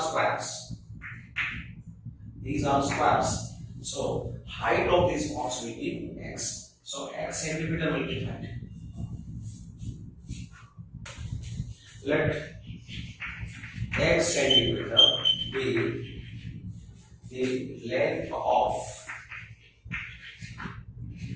squares. These are squares. So height of this box will be x. So x centimeter will be that. Let x centimeter be the length of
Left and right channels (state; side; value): identical; both; correlation 1.00